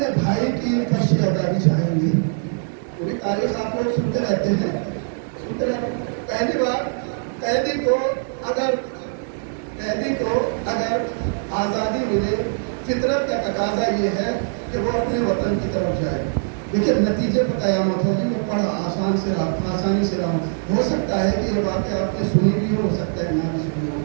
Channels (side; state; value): left; silent; digital silence